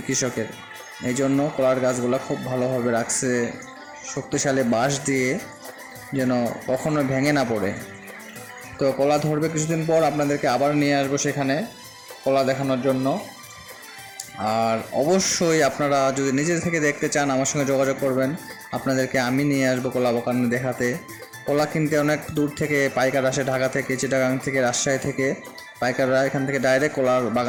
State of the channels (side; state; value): both; identical; correlation 1.00